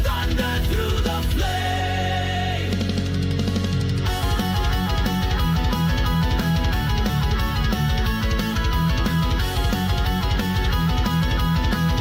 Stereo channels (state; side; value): identical; both; correlation 1.00